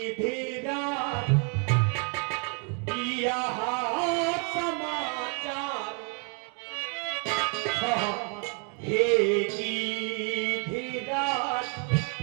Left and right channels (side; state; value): left; quieter; 38.5 dB